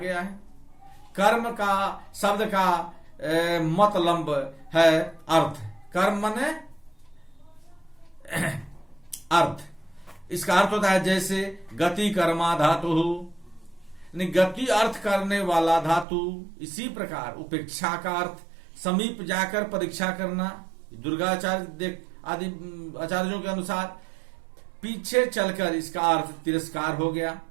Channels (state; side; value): drops out; left; at 16.1 s